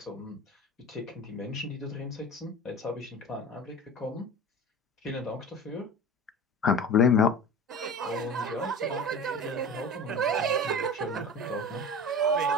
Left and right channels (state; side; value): normal; both; correlation 0.34